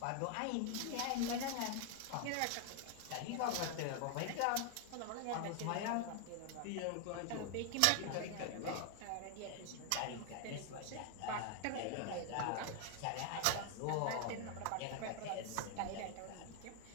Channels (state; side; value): different; both; correlation 0.00